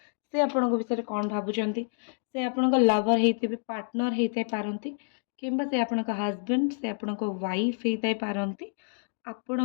से आपण को विषय कोन भाबुचंती से आपण को लवर हेतिबे पार्टनर हेतै पारंती किंबा से आपण को हस्बैंड से आपण को वाइफ हेतै पारंती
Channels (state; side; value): silent; right; digital silence